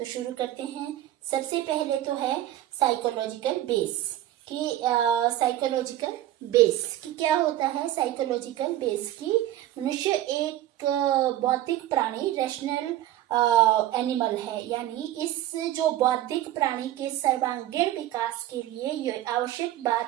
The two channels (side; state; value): left; quieter; 13.5 dB